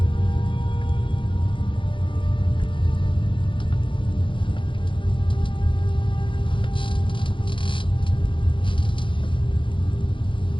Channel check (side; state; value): right; late; 0.24 ms